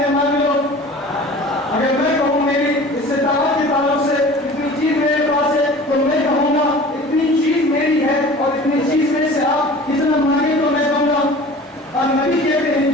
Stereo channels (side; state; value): both; normal; correlation 0.42